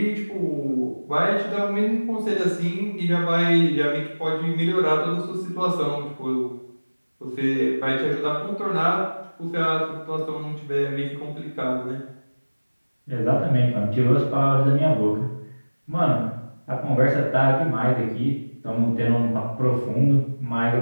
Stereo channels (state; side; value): inverted; both; correlation -1.00